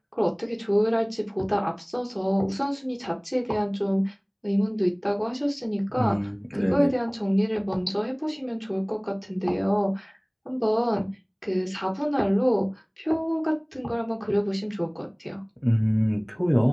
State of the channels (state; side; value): identical; both; correlation 1.00